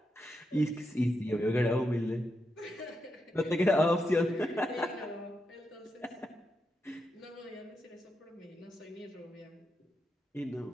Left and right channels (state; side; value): normal; both; correlation 0.85